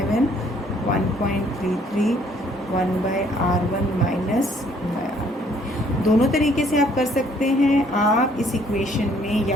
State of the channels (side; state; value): both; normal; correlation 0.63